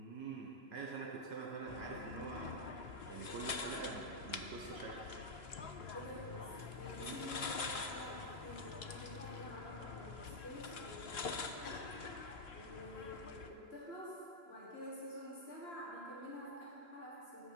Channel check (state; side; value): late; right; 3.0 ms